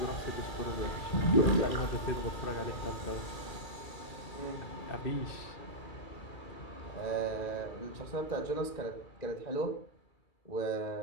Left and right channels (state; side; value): late; right; 2.4 ms